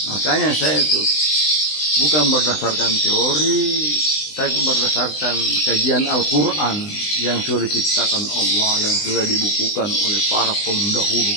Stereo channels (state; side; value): late; right; 20 ms